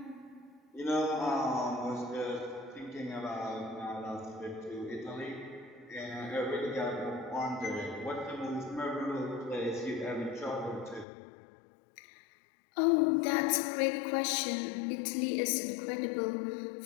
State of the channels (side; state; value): right; drops out; at 11.1 s